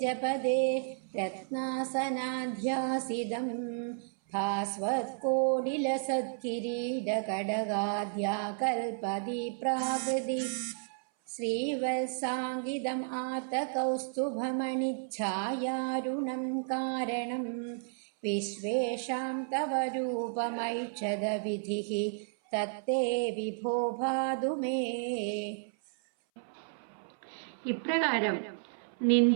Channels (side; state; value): left; silent; 56 dB below the other